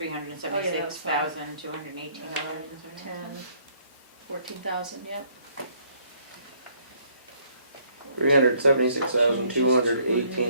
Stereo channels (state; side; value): inverted; both; correlation -0.65